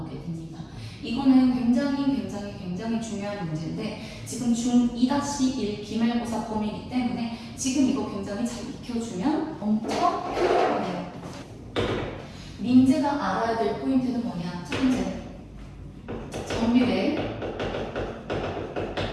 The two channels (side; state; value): both; identical; correlation 1.00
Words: 됩니다. 이거는 굉장히 중요한 문제인데 지금 중2-1 기말고사 범위이기 때문에 지금 이거 굉장히 잘 익혀주면 엄청 효율적이에요. 민재가 알아야 될 포인트는 뭐냐? 첫 번째, 정비례,